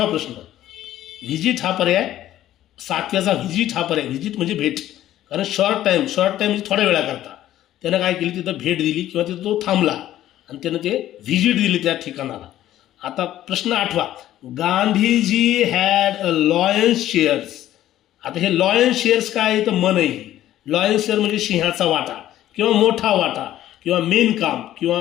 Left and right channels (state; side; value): quieter; right; 13.1 dB